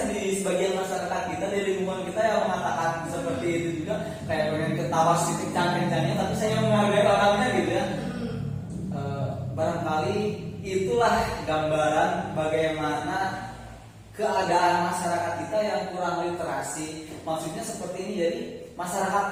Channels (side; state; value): both; identical; correlation 1.00